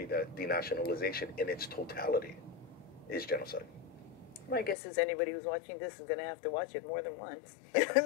that denationalization in its totality is genocide. My guess is anybody who's watching this is going to have to watch it more than once.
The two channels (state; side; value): drops out; right; at 4.8 s